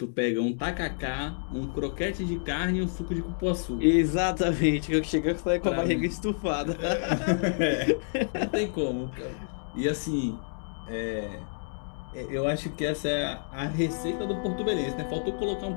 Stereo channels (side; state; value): right; silent; digital silence